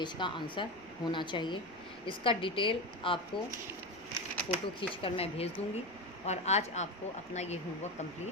का आंसर होना चाहिए। इसका डिटेल आपको फ़ोटो खींचकर मैं भेज दूँगी और आज आपको अपना ये होमवर्क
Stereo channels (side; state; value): left; noise; rumble, 29 dB below the sound